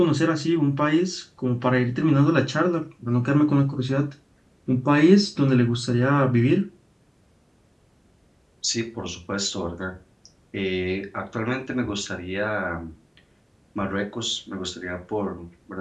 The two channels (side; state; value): both; identical; correlation 1.00